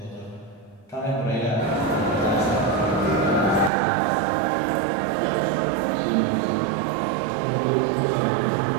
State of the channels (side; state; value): left; drops out; at 3.7 s